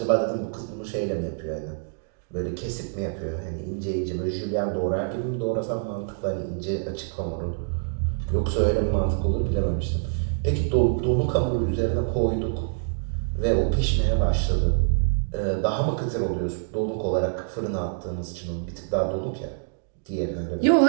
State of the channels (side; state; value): left; silent; digital silence